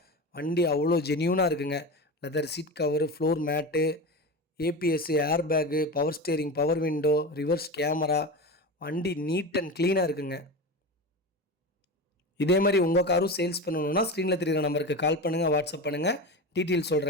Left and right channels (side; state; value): both; normal; correlation 0.25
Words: வண்டி அவ்வளோ ஜென்யூனாக இருக்குங்க. Leather seat cover, floor mat, ABS, air bag, power steering, power window, reverse camera. வண்டி நீட் அண்ட் க்ளீனாக இருக்குங்க. இதே மாதிரி உங்கள் காரும் சேல்ஸ் பண்ணணுன்னா ஸ்க்ரீனில் தெரிகிற நம்பருக்கு கால் பண்ணுங்கள், வாட்ஸ்அப் பண்ணுங்கள். டீட்டெயில்